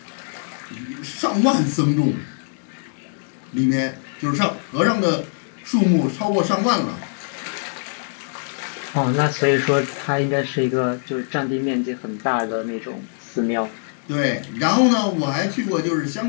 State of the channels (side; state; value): right; silent; digital silence